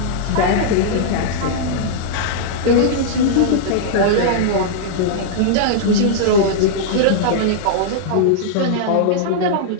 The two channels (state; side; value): different; both; correlation -0.02